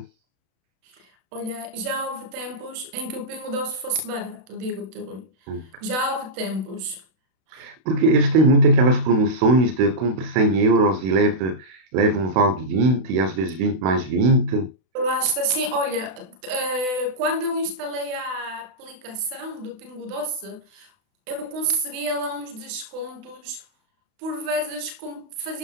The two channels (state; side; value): late; left; 32 ms